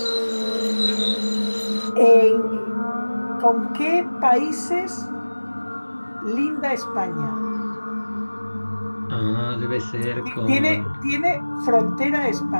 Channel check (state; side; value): inverted; both; correlation -1.00